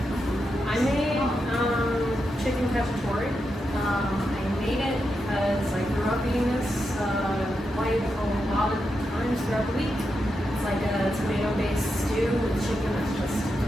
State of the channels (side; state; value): both; normal; correlation 0.86